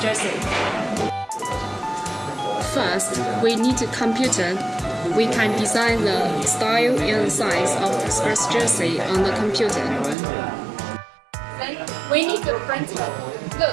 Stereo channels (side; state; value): left; drops out; at 10.2 s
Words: jersey. First, we need a computer. We can design the style and size of the sports jersey on the computer. Then we need a printer.